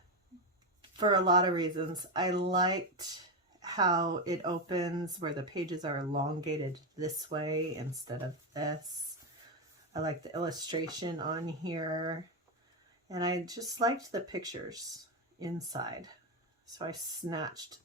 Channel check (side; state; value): both; normal; correlation 0.09